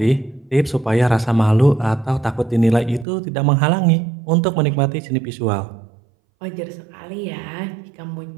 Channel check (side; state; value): left; drops out; at 3.1 s